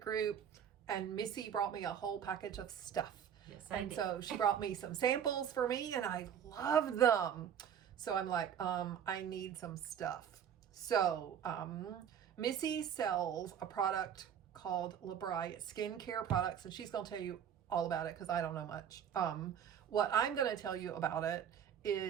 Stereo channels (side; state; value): left; quieter; 8.7 dB